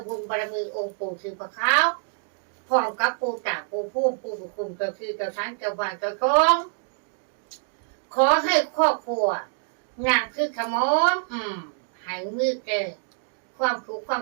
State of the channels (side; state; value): left; silent; digital silence